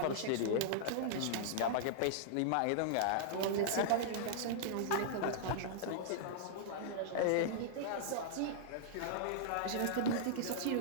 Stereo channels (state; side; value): different; both; correlation -0.02